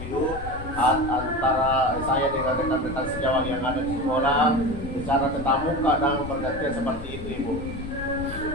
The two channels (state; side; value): noise; left; rumble, 10 dB below the sound